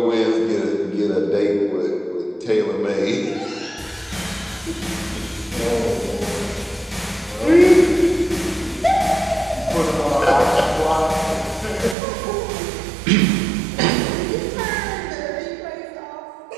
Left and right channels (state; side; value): drops out; left; at 12.0 s